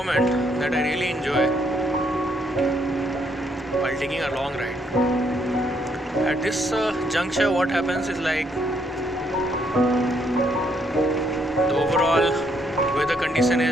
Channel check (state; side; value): normal; both; correlation 0.72